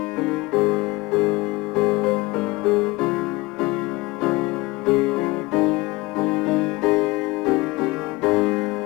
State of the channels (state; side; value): quieter; right; 22.1 dB